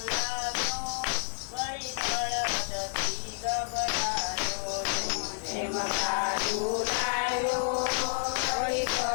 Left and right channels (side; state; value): right; silent; 58 dB below the other